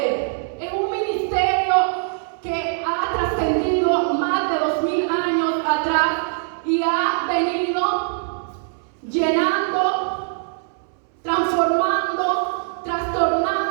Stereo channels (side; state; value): left; silent; 62 dB below the other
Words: es un ministerio que ha trascendido más de 2000 años atrás y ha venido llenando, transformando,